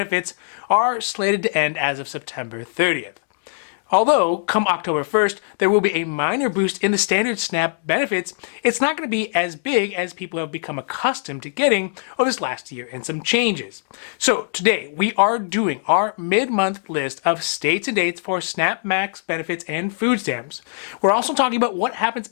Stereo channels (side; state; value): right; silent; digital silence